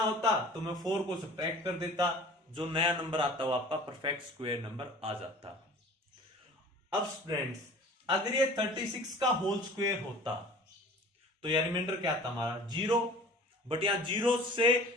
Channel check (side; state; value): both; normal; correlation 0.45